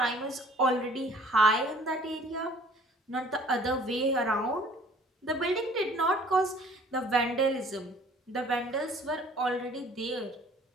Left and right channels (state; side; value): normal; both; correlation 0.53